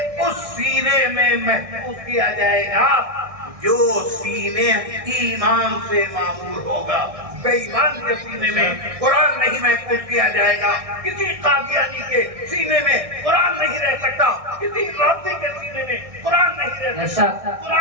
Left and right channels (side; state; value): left; late; 1.6 ms